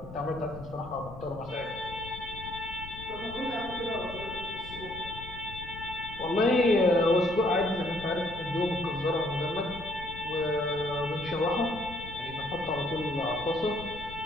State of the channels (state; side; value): noise; left; rumble, 14 dB below the sound